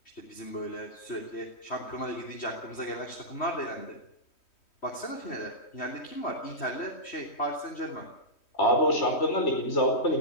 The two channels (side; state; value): right; late; 3.1 ms